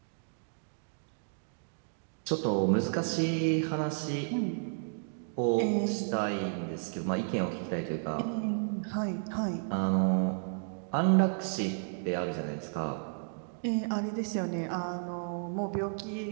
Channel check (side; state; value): left; silent; digital silence